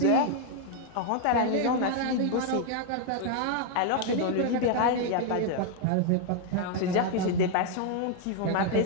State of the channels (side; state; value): both; different; correlation 0.00